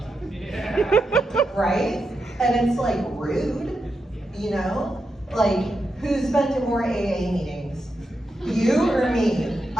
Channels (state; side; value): normal; both; correlation 0.86